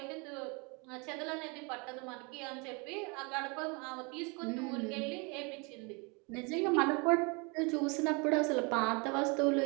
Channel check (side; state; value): left; quieter; 31.2 dB